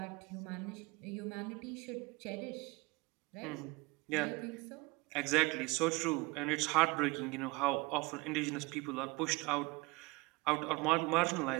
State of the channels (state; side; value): quieter; left; 24.5 dB